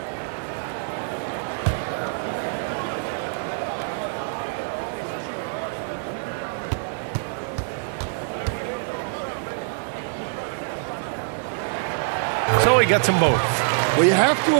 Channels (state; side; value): silent; left; 62 dB below the other